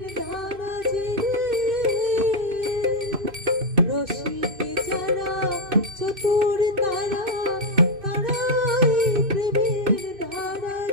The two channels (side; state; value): left; late; 2.6 ms